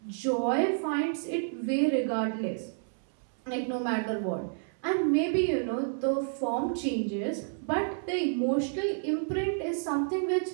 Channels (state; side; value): silent; left; 58 dB below the other